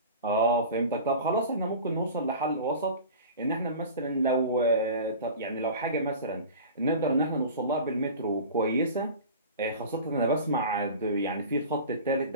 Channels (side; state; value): both; inverted; correlation -0.36